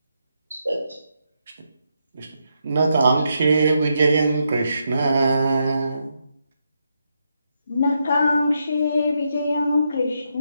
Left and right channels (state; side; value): inverted; both; correlation -0.81